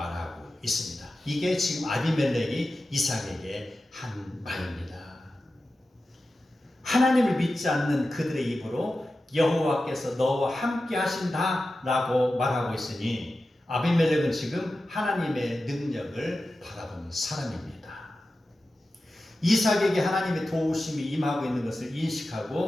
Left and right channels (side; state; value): both; normal; correlation 0.93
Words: 있습니다. 이게 지금 아비멜렉이 이삭에게 한 말입니다. 하나님을 믿지 않는 그들의 입으로 여호와께서 너와 함께 하신다 라고 말하고 있으니 아비멜렉은 지금 하나님의 능력을 바라보는 사람입니다. 이삭에게 하나님의 도우심이 임하고 있는 것을